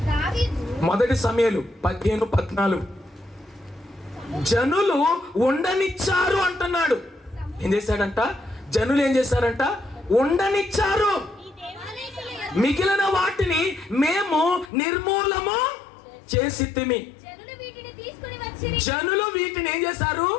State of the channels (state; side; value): drops out; right; at 14.7 s